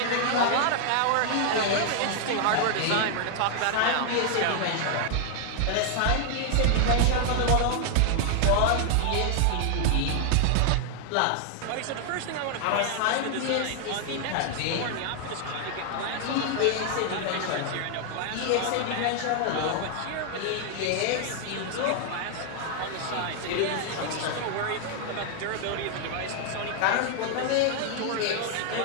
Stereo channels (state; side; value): different; both; correlation 0.00